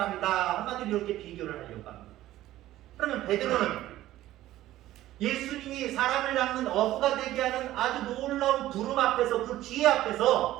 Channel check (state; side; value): quieter; left; 14.7 dB